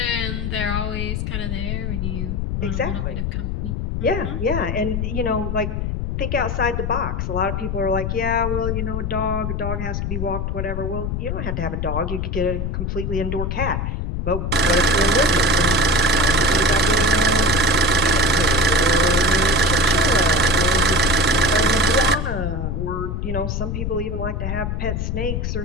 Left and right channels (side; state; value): left; noise; rumble, 2 dB below the sound